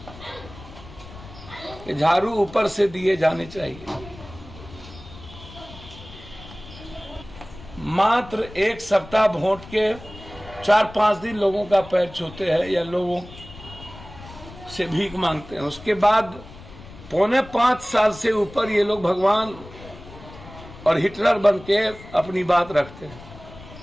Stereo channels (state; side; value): noise; left; rumble, 17 dB below the sound